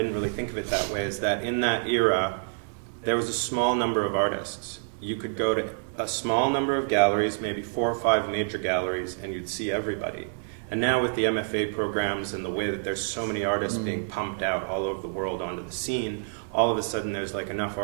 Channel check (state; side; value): silent; left; digital silence